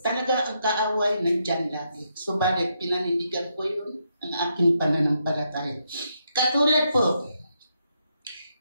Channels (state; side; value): inverted; both; correlation -0.79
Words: Talaga ang kaaway nandyan lagi. Subalit, pinanindigan ko yun ang aking pananampalataya. Katulad